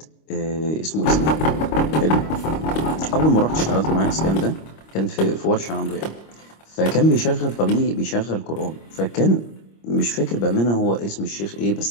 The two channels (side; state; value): right; late; 25 ms